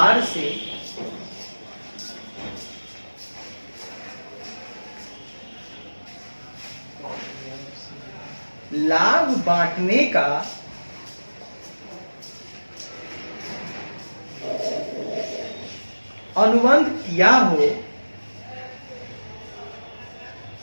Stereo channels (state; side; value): inverted; both; correlation -1.00